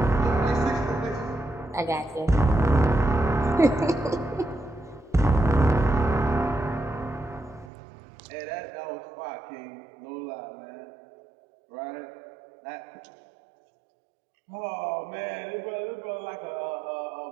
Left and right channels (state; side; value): drops out; left; at 7.7 s